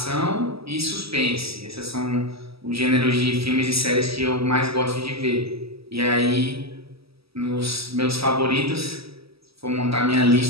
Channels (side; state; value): left; late; 0.76 ms